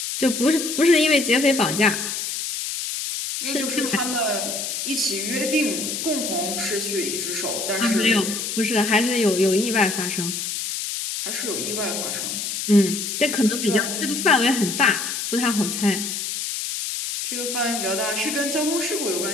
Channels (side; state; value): left; noise; hiss, 4 dB below the sound